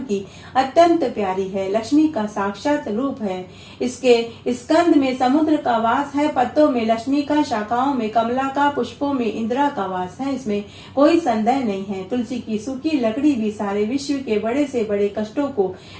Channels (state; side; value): identical; both; correlation 1.00